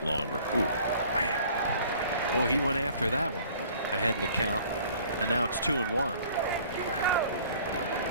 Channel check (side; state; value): both; inverted; correlation -0.53